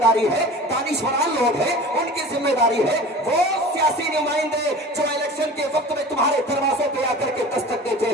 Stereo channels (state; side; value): normal; both; correlation 0.39